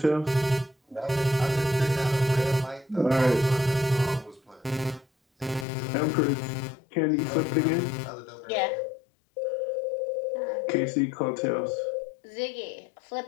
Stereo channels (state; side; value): drops out; right; at 5.7 s